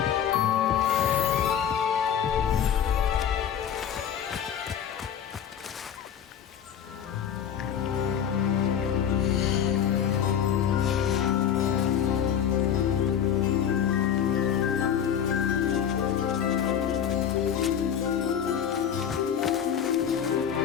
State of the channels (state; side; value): quieter; right; 8.8 dB